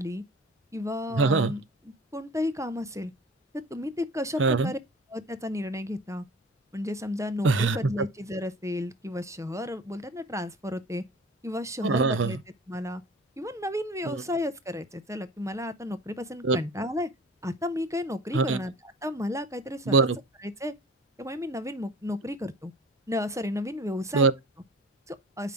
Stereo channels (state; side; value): normal; both; correlation 0.40